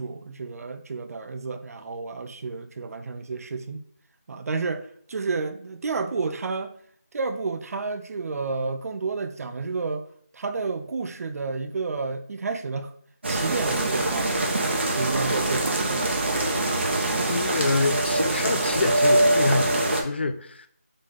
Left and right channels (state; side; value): inverted; both; correlation -0.72